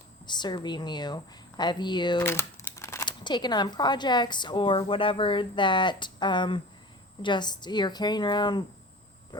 serving you? Have you taken on projects or whatever that just you're carrying around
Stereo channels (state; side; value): normal; both; correlation 0.37